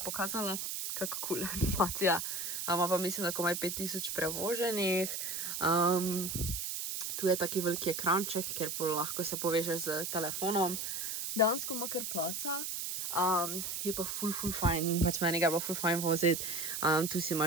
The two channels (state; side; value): noise; right; hiss, 3 dB below the sound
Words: Kako cool animacija. Ima pa mislim, da komaj 5000 prevoženih. Tu je taki veliki ekranček, kjer lahko se povežeš z telefonom. Dejansko ima kar placa. Je pa full fajn. Pač meni ga je bilo full fajn voziti. Tu si